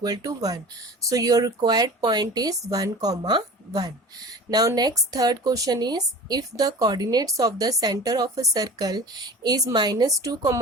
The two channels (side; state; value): both; normal; correlation 0.39